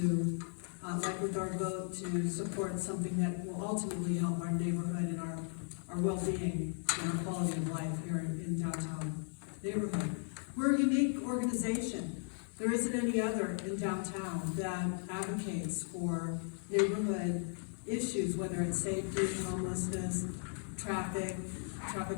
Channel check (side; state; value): right; silent; 53 dB below the other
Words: like with our vote, to support something that will ultimately help our neighborhood and our well-being and our quality of life here in downtown neighborhood. We're a unique organization. There isn't any other in downtown that advocates for neighborhood issues, whether it's safety, homelessness, traffic